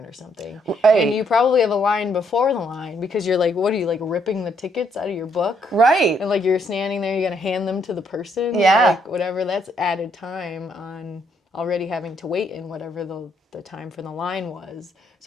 or something. Right. And you probably have a line before the line because you're like, what are you, like ripping the tickets out of your book? Right. And like you're standing there, you're going to hand them to the person. Yeah. Like whatever, that's added time on already having to wait in whatever the time for the line was.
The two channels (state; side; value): normal; both; correlation 0.72